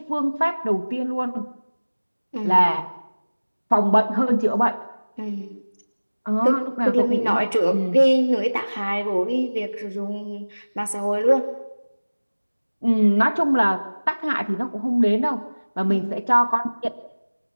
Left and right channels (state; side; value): inverted; both; correlation -1.00